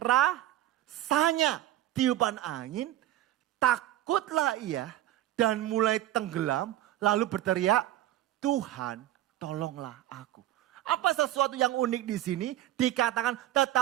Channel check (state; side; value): quieter; left; 13.9 dB